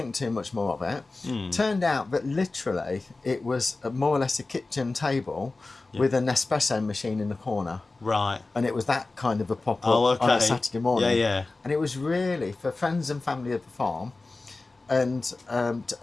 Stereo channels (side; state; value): right; quieter; 3.4 dB